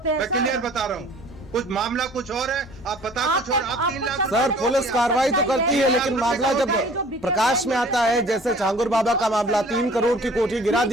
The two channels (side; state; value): both; normal; correlation 0.50